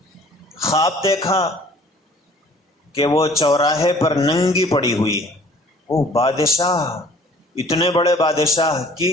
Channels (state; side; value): normal; both; correlation 0.53